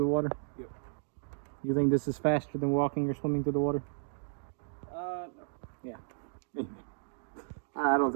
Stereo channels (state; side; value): silent; left; digital silence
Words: the water? Yep. You think this is faster than walking or swimming through the water? No. Yeah. I don't